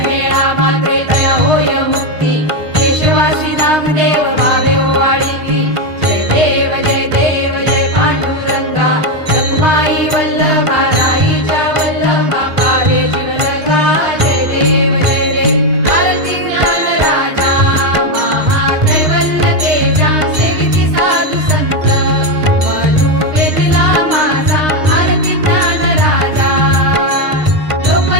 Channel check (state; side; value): late; left; 6.5 ms